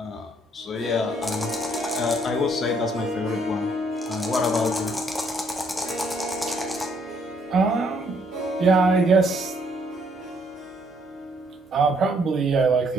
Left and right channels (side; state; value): both; normal; correlation 0.68